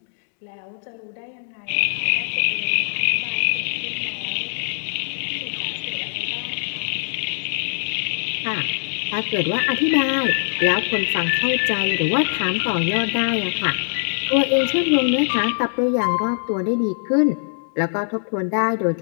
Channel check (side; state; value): right; silent; digital silence